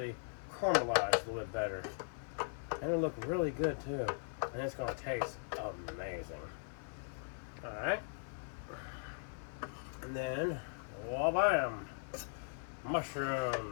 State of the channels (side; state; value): right; silent; 52 dB below the other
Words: caramelize a little bit better. And it'll look really good too. And it's going to taste amazing. Alright. And then, wha-bam!